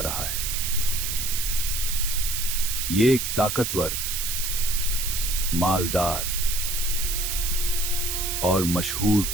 रहा है। ये एक ताकतवर, मालदार और मशहूर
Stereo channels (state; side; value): noise; right; hiss, 2 dB below the sound